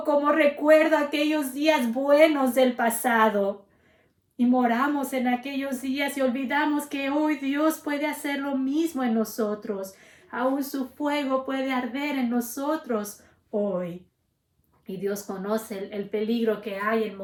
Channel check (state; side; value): identical; both; correlation 1.00